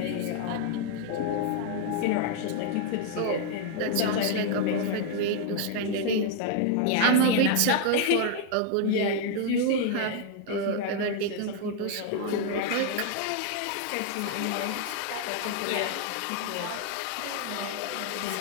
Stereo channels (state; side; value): different; both; correlation 0.00